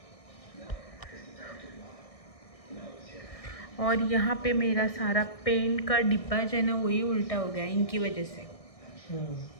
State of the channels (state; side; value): late; right; 1.6 ms